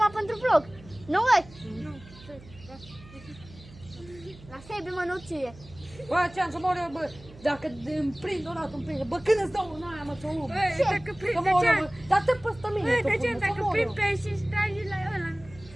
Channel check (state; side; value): noise; right; hum, 20 dB below the sound